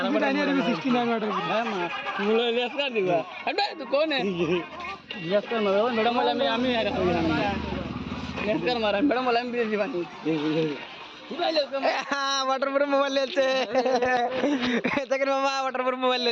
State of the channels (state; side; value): identical; both; correlation 1.00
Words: বড় নিয়ে 69 অর্ডার হ্যাঁ মা মোবাইল লেস কর দিবা আরে তুই কোন है লেস কর মারো ম্যাডাম বলে আমি আর কই না লেস কর মারো ম্যাডাম বলে আমি দিবা নি वाटर प्रूफ मोबाइल लेते দেখেন মামা वाटर प्रूफ मोबाइल